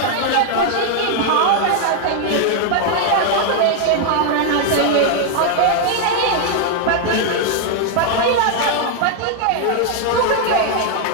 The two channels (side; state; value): both; different; correlation 0.00